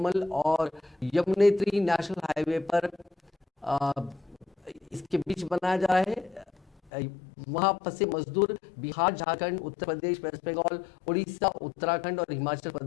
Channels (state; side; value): drops out; right; at 6.9 s